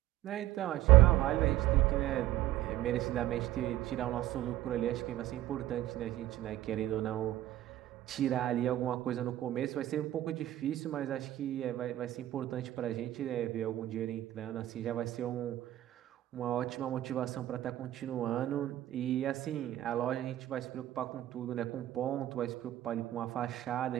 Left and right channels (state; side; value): quieter; left; 14.3 dB